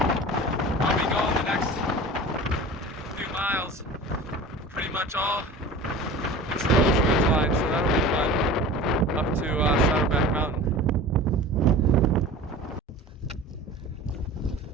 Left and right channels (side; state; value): both; normal; correlation 0.37